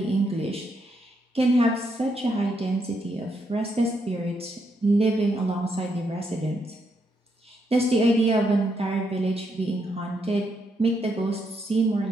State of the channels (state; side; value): normal; both; correlation 0.78